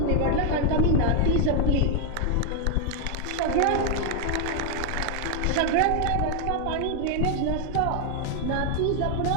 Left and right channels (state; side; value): different; both; correlation 0.00